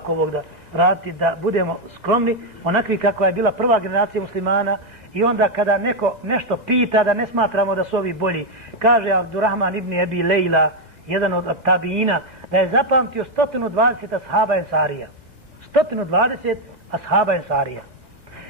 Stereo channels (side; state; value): left; late; 1.6 ms